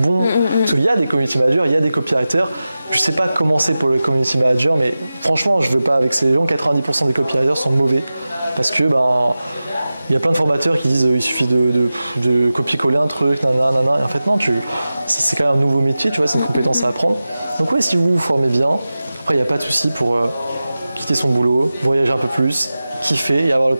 Parce qu'il y a des community managers, il y a des copywriters. Je sais pas comment c'est pour les community managers, mais franchement, je veux pas vexer les gens. 90% des copywriters sont mauvais parce que il y a plein de formateurs qui disent il suffit de copier-coller un truc, nanana. Et en fait, non, c'est quand même un nouveau métier, tu vois, c'est une compétence à apprendre. Donc, ouais, si vous vous formez bien, après, il n'y a pas de souci pour quitter son boulot, voyager un peu plus, kiffer et avoir le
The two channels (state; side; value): inverted; both; correlation -0.95